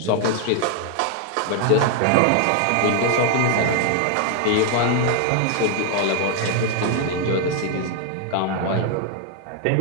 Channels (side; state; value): both; different; correlation 0.00